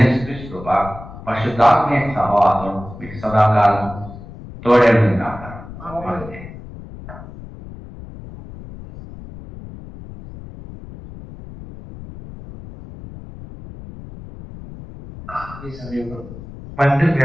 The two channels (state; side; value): noise; left; rumble, 15 dB below the sound